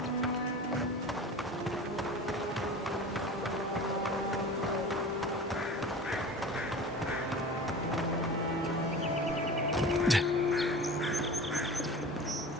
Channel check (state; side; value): normal; both; correlation 0.36